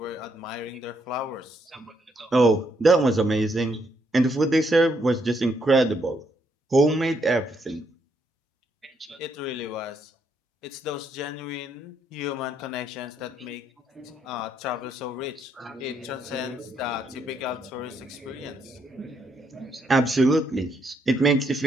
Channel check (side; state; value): both; normal; correlation 0.74